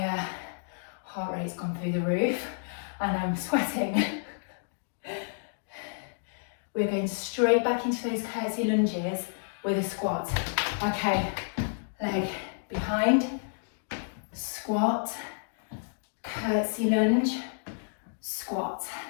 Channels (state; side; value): silent; right; digital silence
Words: heart rate's gone through the roof and I'm sweating. We're going straight back into those curtsy lunges with a squat. Okay, leg behind, squat, curtsy lunge, squat.